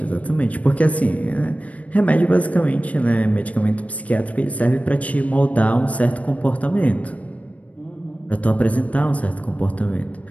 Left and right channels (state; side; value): late; right; 0.067 ms